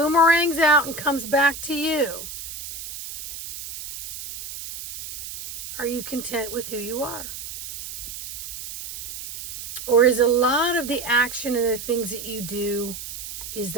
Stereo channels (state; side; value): noise; right; hiss, 10 dB below the sound